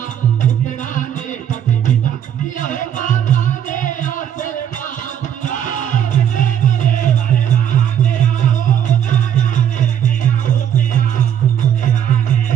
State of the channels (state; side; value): quieter; left; 9.4 dB